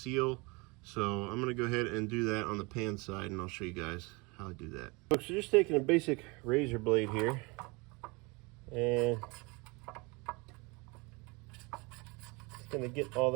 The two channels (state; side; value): quieter; left; 27.4 dB